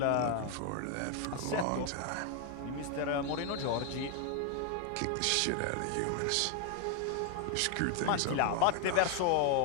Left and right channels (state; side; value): different; both; correlation 0.01